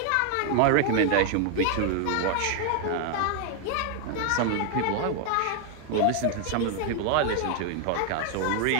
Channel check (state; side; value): different; both; correlation 0.00